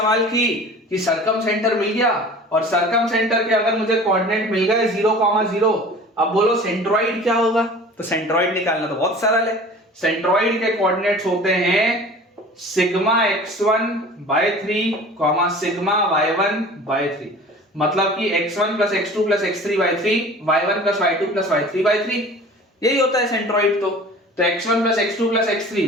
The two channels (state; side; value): normal; both; correlation 0.42